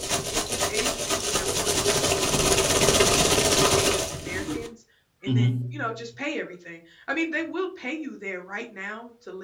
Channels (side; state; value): both; identical; correlation 1.00